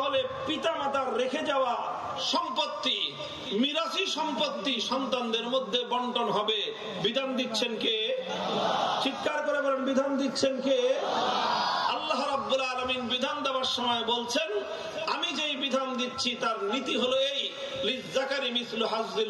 পিতামাতার রেখে যাওয়া সম্পত্তি, মিরাসি সম্পত্তি সন্তানদের মধ্যে বন্টন হবে। বিধান দিচ্ছেন কে? চিৎকার করে বলেন, বিধান দিচ্ছেন কে? আল্লাহ রাব্বুল আলামিন বিধান দেওয়ার সময় বলছেন, আমি যেই বিধান দিচ্ছি তার নীতি হলো এই, লিয-যাকারি মিসলু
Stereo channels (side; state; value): both; identical; correlation 1.00